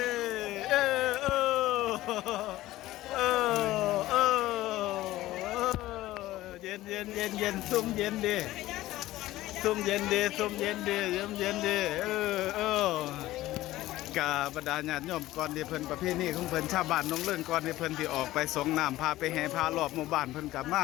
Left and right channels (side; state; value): right; quieter; 16.2 dB